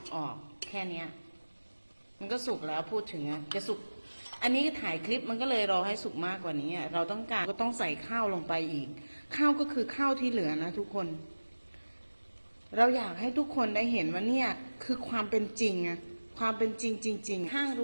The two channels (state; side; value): inverted; both; correlation -1.00